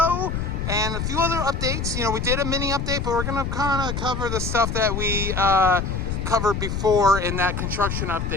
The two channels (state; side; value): noise; left; rumble, 3 dB below the sound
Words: and a few other updates. You know, we did a mini update, but we're going to kind of cover the stuff that we covered before in that construction